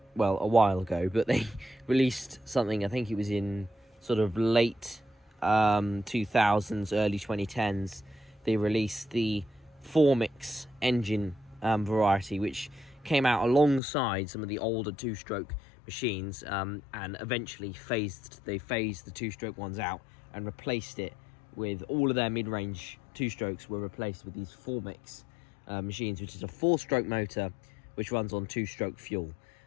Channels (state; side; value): drops out; right; at 13.8 s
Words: well, a while ago, but they released something, I think it was in sort of late 2000s, early 2010s. They released the 4-mix engine variety, which came out alongside some of the older 2-stroke machines, and eventually phased the 2-stroke ones out and replaced it with all of their mid-range 2-strokes were replaced with these 4-mix machines, which is a 4-stroke motor which runs on 2-stroke fuel.